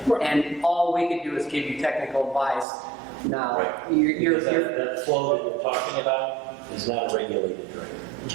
Right. And all we could do is give you technical advice. Now, Right. you're That flow that you're talking about is not a regulated drain.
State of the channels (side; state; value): left; drops out; at 2.7 s